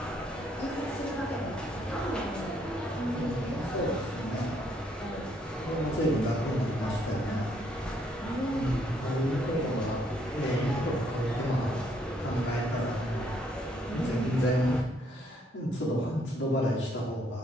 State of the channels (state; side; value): normal; both; correlation 0.70